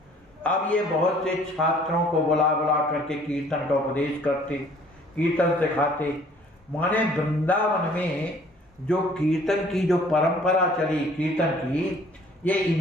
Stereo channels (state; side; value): normal; both; correlation 0.56